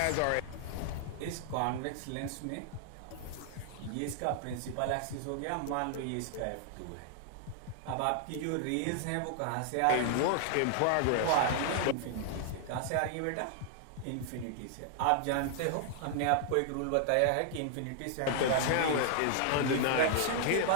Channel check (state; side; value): different; both; correlation -0.01